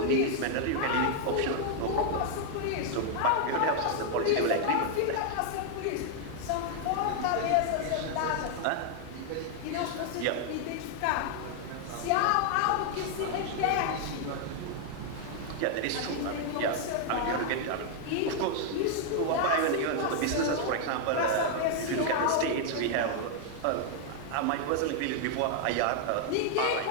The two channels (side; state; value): both; different; correlation 0.00